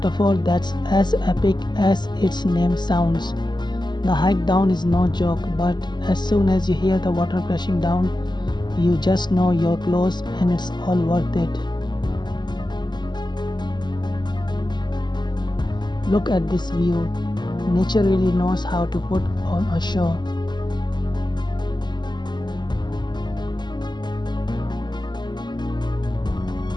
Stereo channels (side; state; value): right; late; 0.21 ms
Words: that's as epic as its name sounds. The hike down is no joke, but as soon as you hear the water crashing down, you just know you're close and it's all worth it. Look at this view. Nature really knows how to put on a show.